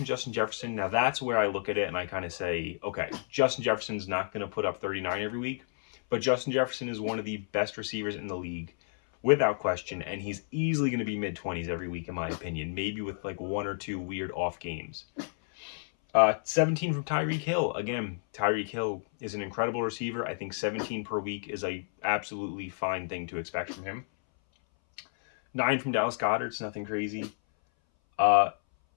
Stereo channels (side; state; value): right; silent; 57 dB below the other